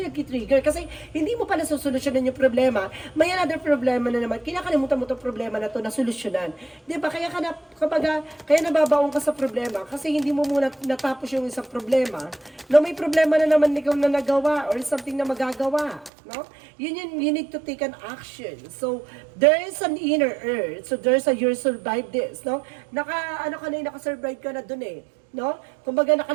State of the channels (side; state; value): left; drops out; at 16.1 s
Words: nag-trigger. Kasi hindi mo pala solusyonan yung problema. May another problema na naman. Kinakalimutan mo itong problema na to na solusyonan. Diba? Kaya nababaon ka sa problema. Kasi hindi mo muna natapos yung isang problema. No, may problema na naman ikaw na nagawa or something na magagawa. No? You need to take an action. So, there is an inner earth. So, there's a you survive this. No? Naka-survive ka na dun eh. No? Kumbaga